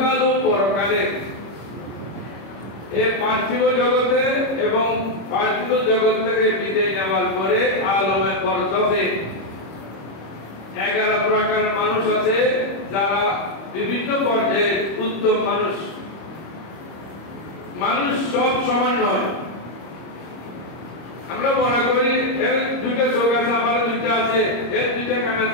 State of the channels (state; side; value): late; right; 26 ms